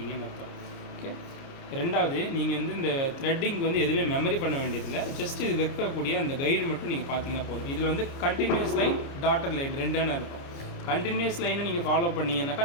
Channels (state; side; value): late; right; 30 ms